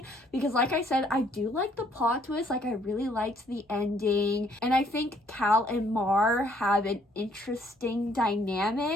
because like I said, I do like the plot twist. Like, I really liked the ending, and I think Cal and Mar have an interesting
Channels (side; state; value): both; normal; correlation 0.65